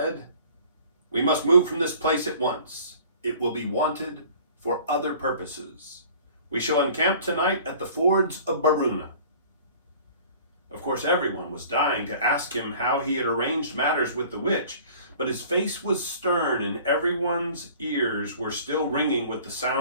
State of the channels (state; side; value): inverted; both; correlation -0.48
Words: "We must move from this place at once. It will be wanted for other purposes. We shall encamp tonight at the fords of Baruna." Of course, everyone was dying to ask him how he had arranged matters with the witch, but his face was stern and everyone's ears were still ringing with the